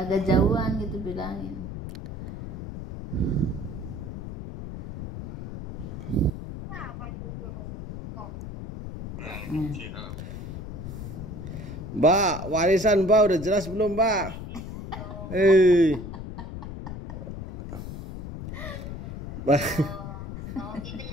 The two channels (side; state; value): left; noise; rumble, 9 dB below the sound